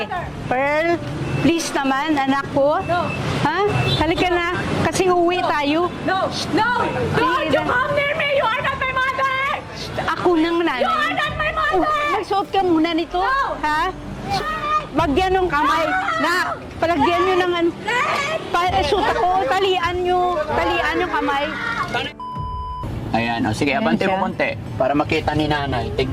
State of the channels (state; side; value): identical; both; correlation 1.00